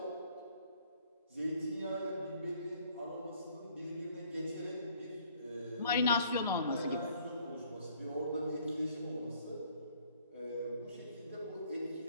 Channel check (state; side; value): inverted; both; correlation -0.61